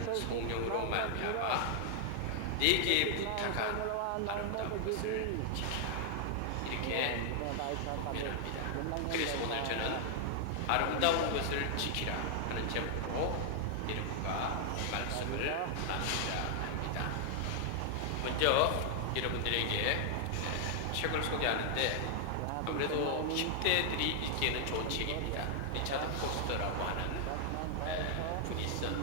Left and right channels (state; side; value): different; both; correlation 0.00